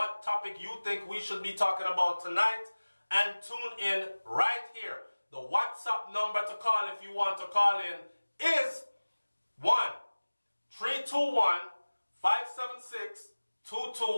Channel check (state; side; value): inverted; both; correlation -1.00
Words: topic you think we should be talking about tonight, and tune in right here. The WhatsApp number to call if you want to call in is